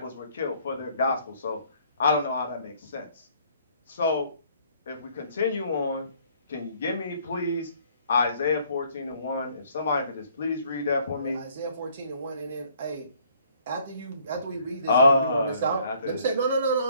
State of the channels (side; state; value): both; inverted; correlation -0.62